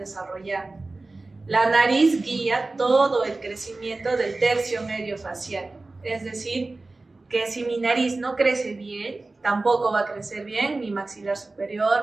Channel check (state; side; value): quieter; left; 3.3 dB